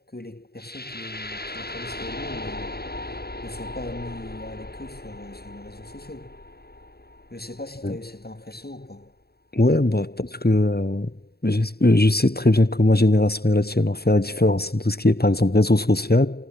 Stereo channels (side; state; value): right; late; 0.46 ms